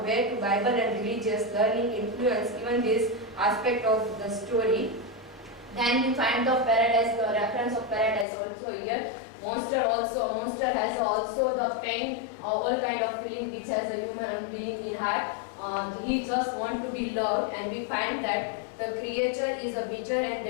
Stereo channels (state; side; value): drops out; right; at 8.2 s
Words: way to Bible and religious learning influence even this aspect of the story. Then we find the paradise, the reference of paradise also here. Monster has also the pain, all kind of feeling which has a human being in heart. He just want to be loved, and we find that the creature is a bitter and